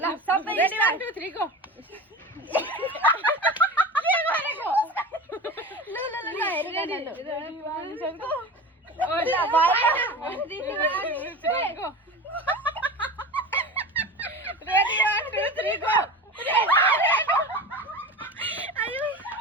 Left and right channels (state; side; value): normal; both; correlation 0.30